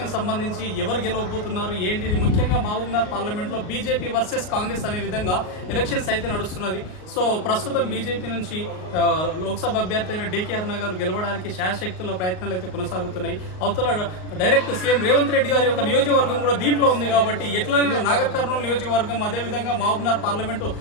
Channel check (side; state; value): right; late; 38 ms